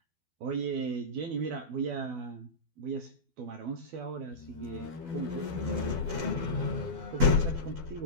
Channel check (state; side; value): late; left; 12 ms